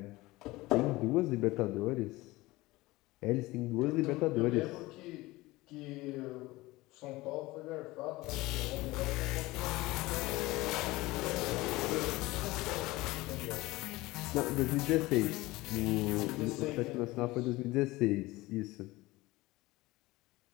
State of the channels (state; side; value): quieter; right; 20.1 dB